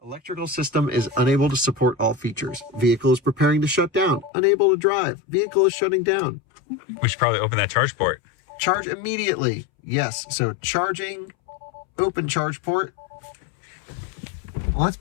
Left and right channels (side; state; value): right; drops out; at 4.3 s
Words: Electrical system is unable to support all features. Vehicle is preparing to shut down. Unable to drive. Vehicle is shutting down. We should probably open that charge port. Charge immediately. Yes, so charging, open charge port. Let's